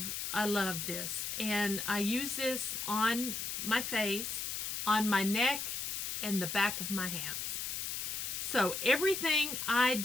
this, and I use this on my face, on my neck, and the back of my hands. So everything I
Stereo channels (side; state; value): left; noise; hiss, 3 dB below the sound